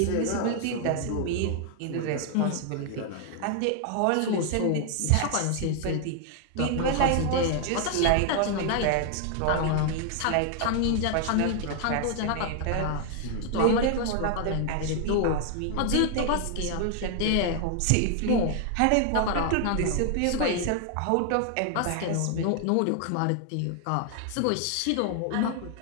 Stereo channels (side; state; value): both; different; correlation 0.00